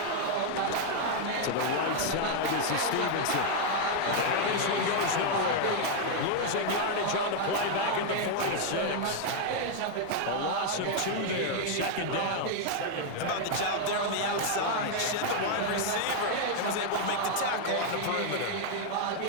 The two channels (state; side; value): different; both; correlation 0.00